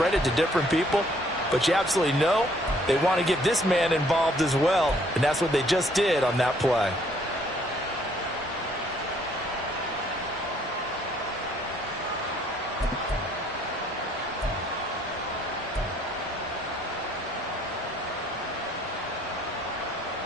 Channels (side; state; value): both; normal; correlation 0.64